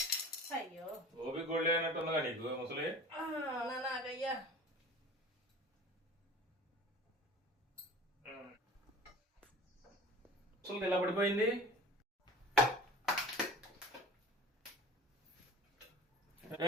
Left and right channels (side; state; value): both; normal; correlation 0.41